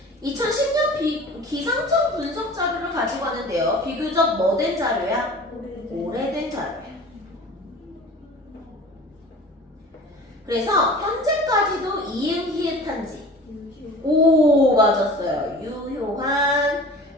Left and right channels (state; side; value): normal; both; correlation 0.41